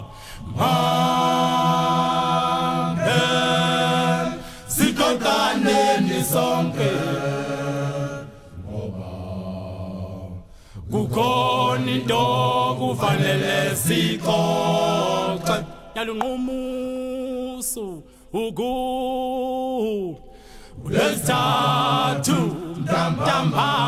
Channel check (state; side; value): identical; both; correlation 1.00